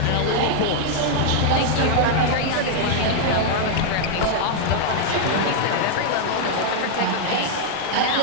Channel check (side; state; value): both; different; correlation 0.00